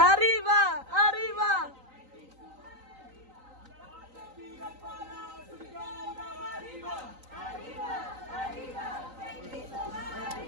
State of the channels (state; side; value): late; left; 3.9 ms